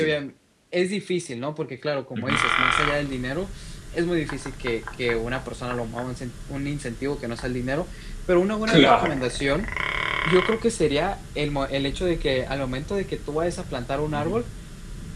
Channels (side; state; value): both; identical; correlation 1.00